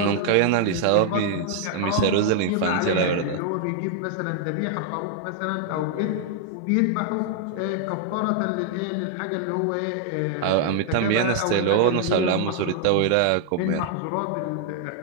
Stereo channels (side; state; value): both; different; correlation 0.00